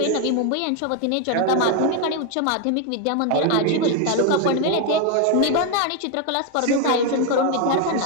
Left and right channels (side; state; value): both; different; correlation 0.01